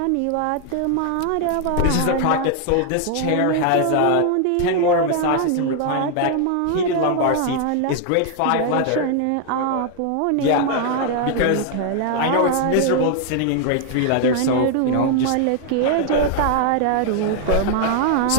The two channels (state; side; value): different; both; correlation 0.00